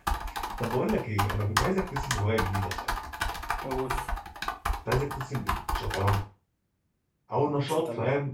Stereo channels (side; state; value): both; identical; correlation 1.00